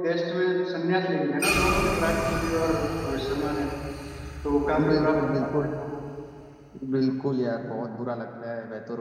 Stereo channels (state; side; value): identical; both; correlation 1.00